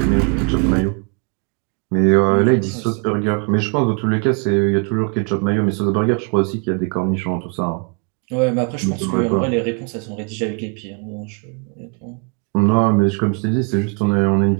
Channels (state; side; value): quieter; left; 35.4 dB